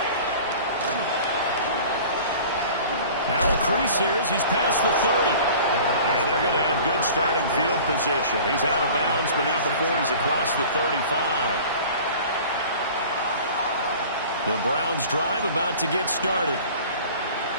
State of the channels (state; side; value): inverted; both; correlation -0.43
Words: Now a crease here as he's past the 30. And they're going to have good starting field position. He's out of bounds, but not before he's across the 35. The Browns drive about to get started.